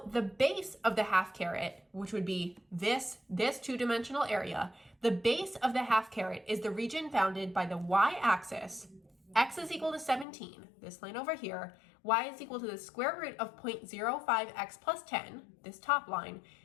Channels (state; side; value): drops out; right; at 10.2 s